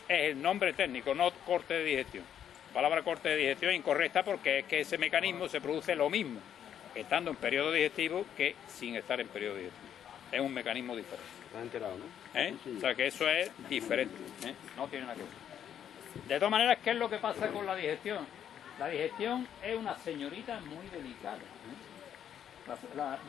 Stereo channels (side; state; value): right; quieter; 9.4 dB